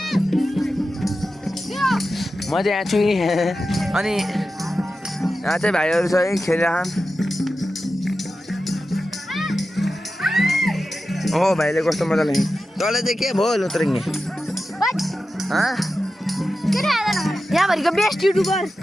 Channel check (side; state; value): both; normal; correlation 0.92